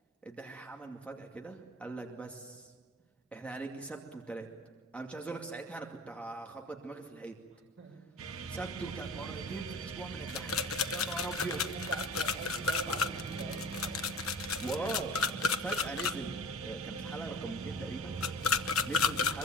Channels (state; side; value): normal; both; correlation 0.41